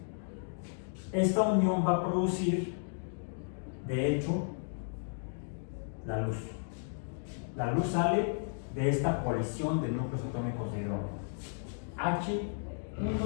esta unión va a producir, de hecho, la luz. La luz sale de esta colisión de núcleos atómicos de hidrógeno.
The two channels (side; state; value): right; silent; digital silence